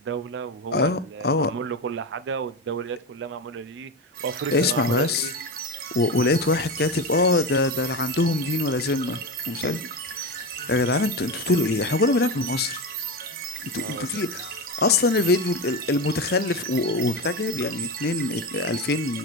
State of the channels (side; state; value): both; normal; correlation 0.20